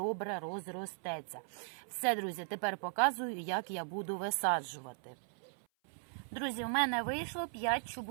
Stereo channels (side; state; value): left; silent; 53 dB below the other